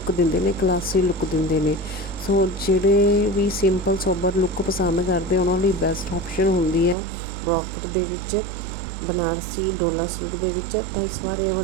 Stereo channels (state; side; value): drops out; left; at 7.0 s